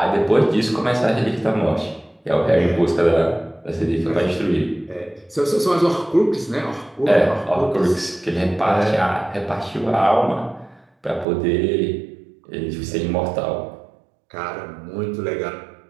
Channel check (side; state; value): left; drops out; at 11.2 s